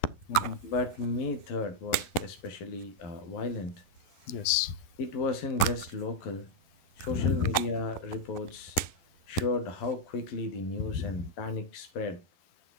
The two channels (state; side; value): late; right; 11 ms